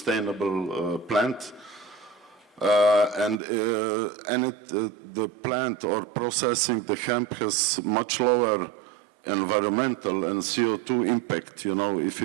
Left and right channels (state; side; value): drops out; left; at 3.4 s